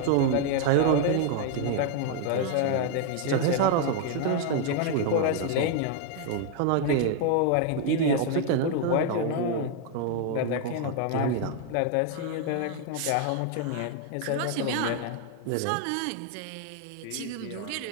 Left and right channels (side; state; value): both; different; correlation 0.00